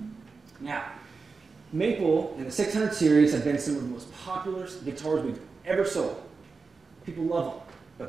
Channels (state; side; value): quieter; left; 4.5 dB